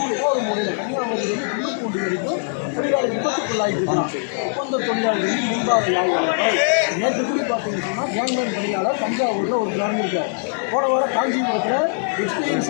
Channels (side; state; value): right; silent; digital silence